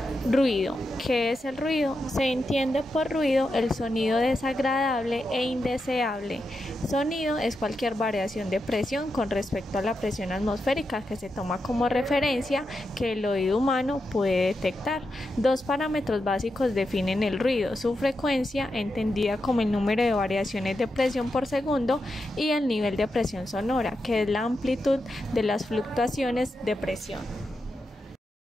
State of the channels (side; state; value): both; normal; correlation 0.87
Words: Ruido. ¿Qué es el ruido? Se entiende por ruido el sonido desagradable e indeseable. Sonido es cualquier variación de presión con respecto a la presión atmosférica que se toma como referencia que el oído humano puede detectar. Dos parámetros básicos definen el ruido: su frecuencia, entendida como el número de variaciones de presión por segundo, y el nivel de presión sonora, que es la amplitud de las fluctuaciones de presión.